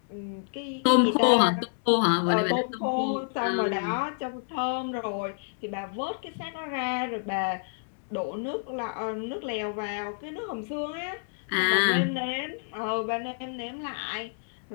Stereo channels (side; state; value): right; silent; digital silence